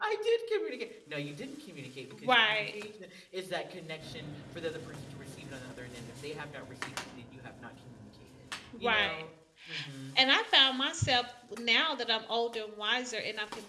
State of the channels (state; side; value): identical; both; correlation 1.00